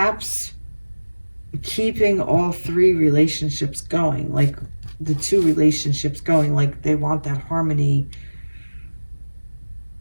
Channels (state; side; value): inverted; both; correlation -1.00